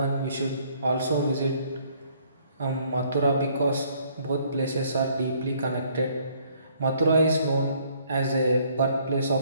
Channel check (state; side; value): inverted; both; correlation -0.64